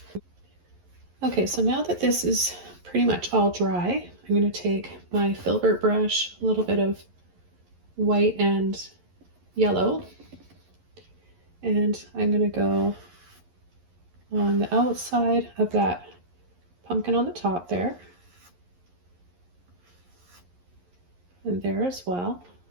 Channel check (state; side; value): late; left; 11 ms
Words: Okay, so now that this is pretty much all dry, I'm going to take my filbert brush, a little bit of white and yellow, and I'm going to go on the outside of that pumpkin on the top there, and there as well.